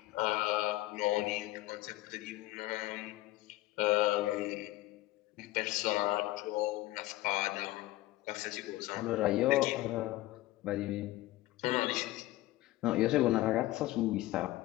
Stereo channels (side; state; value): right; quieter; 17.3 dB